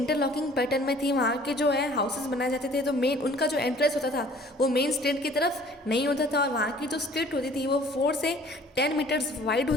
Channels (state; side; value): normal; both; correlation 0.53